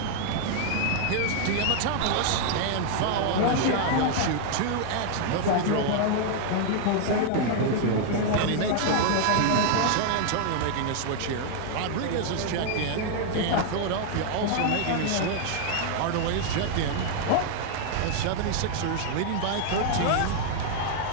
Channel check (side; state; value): both; different; correlation 0.00